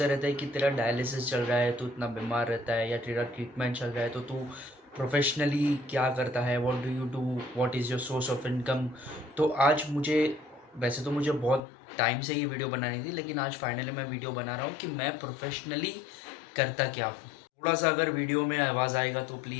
रहते हैं कि तेरा डायलिसिस चल रहा है, तू इतना बीमार रहता है, या तेरा ट्रीटमेंट चल रहा है तो तू प्रोफेशनली क्या करता है, what do you do, what is your source of income. तो आज मुझे, वैसे तो मुझे बहुत टाइम से ये वीडियो बनानी थी, लेकिन आज फाइनली मैं वीडियो बना रहा हूँ कि मैं प्रोफेशनली करता क्या हूँ। थोड़ा सा अगर वीडियो में आवाज़ आएगा तो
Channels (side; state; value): right; drops out; at 11.6 s